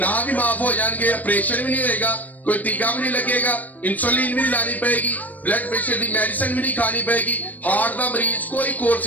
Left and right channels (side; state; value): right; late; 0.078 ms